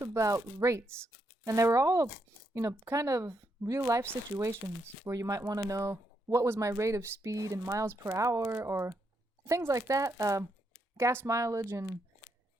about rates, and they were all, kind of real life situations where you might want to know what was my rate of speed in miles per hour or things like that, gas mileage and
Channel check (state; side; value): normal; both; correlation 0.79